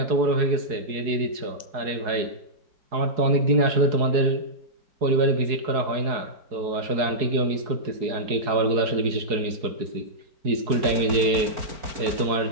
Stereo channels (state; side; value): late; left; 4.7 ms